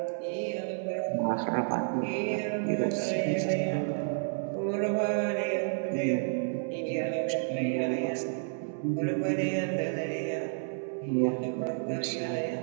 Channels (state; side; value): silent; left; 57 dB below the other